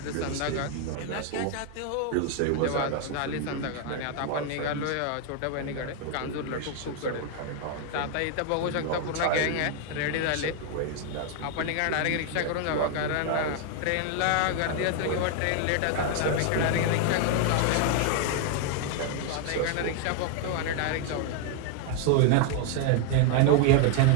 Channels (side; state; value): both; different; correlation 0.01